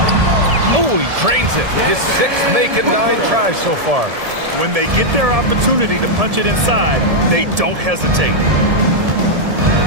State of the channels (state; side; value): late; left; 1.7 ms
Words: Oh, he drains it. His 6th making 9 tries so far. When they get their opportunity to punch it inside, they don't hesitate.